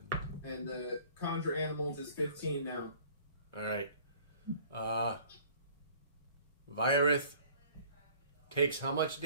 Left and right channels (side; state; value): both; inverted; correlation -0.51